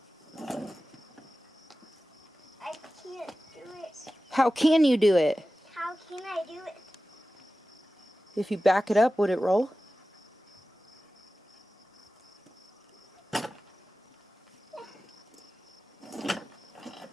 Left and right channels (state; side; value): normal; both; correlation 0.95